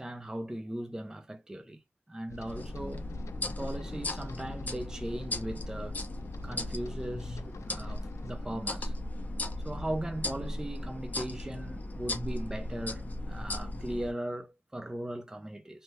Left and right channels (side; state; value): both; normal; correlation 0.72